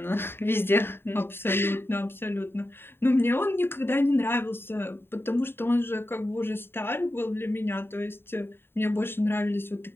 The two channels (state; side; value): late; right; 0.11 ms